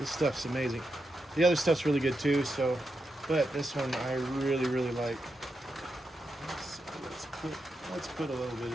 stuff's amazing. The other stuff's really good too, but this one I really, really like. Let's put a little bit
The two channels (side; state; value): both; normal; correlation 0.86